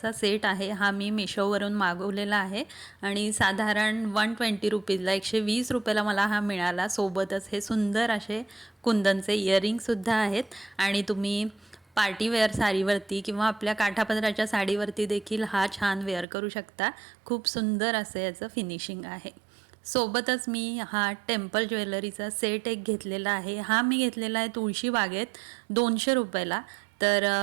सेट आहे, हा मी मिशोवरून मागवलेला आहे आणि साधारण ₹120ला ₹120ला मला हा मिळाला. सोबतच हे सुंदर असे कुंदनचे इयरिंगसुद्धा आहेत आणि तुम्ही पार्टीवेअर साडीवरती किंवा आपल्या काठापदराच्या साडीवरती देखील हा छान वेअर करू शकता. खूप सुंदर असं याचं फिनिशिंग आहे. सोबतच मी हा टेम्पल ज्वेलरीचा सेट एक घेतलेला आहे. हा मी घेतलेला आहे तुळशी बागेत ₹200ला. तर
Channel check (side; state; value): left; drops out; at 16.2 s